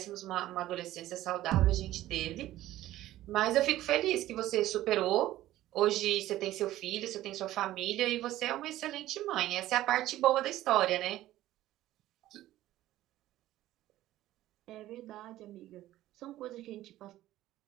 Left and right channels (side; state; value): left; quieter; 14.8 dB